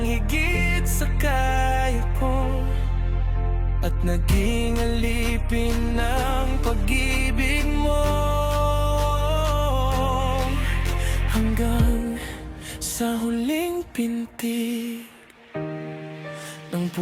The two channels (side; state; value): both; identical; correlation 1.00